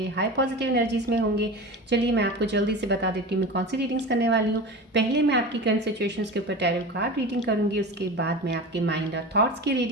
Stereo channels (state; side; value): normal; both; correlation 0.30